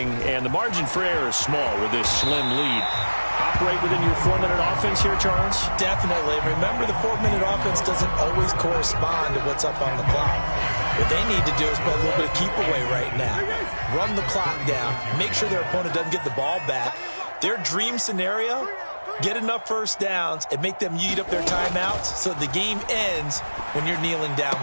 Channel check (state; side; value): inverted; both; correlation -1.00